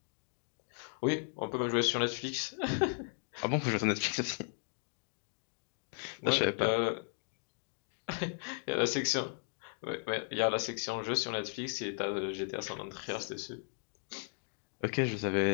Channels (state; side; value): silent; right; 54 dB below the other